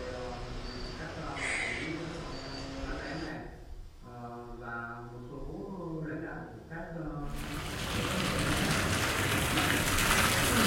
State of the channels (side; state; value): both; identical; correlation 1.00